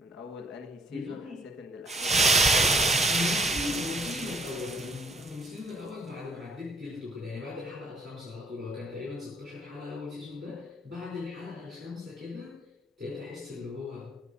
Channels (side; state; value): both; normal; correlation 0.63